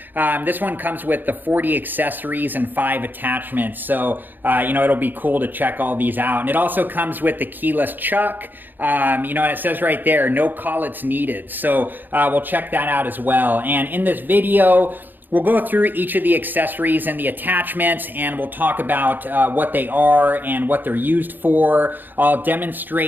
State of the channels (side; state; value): left; late; 0.090 ms